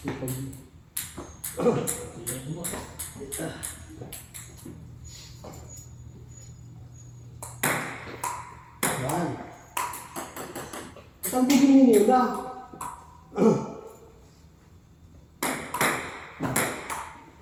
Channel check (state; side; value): identical; both; correlation 1.00